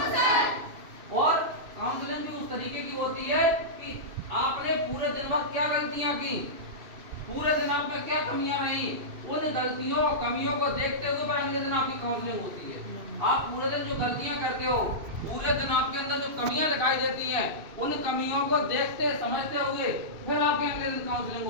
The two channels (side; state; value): left; late; 2.6 ms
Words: और काउंसलिंग भी उस तरीके की होती है कि आपने पूरे दिन भर क्या गलतियां की, पूरे दिन आप में क्या कमियां रही, उन गलतियों कमियों को देखते हुए पर अगले दिन आपकी काउंसलिंग होती है। आप पूरे दिन जो गलतियां करते हो, पूरे दिन आपके अंदर जो कमियां दिखाई देती हैं, उन कमियों को देखते समझते हुए फिर आपके अगले दिन काउंसलिंग